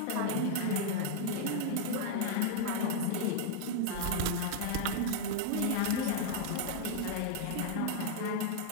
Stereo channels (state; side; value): different; both; correlation 0.00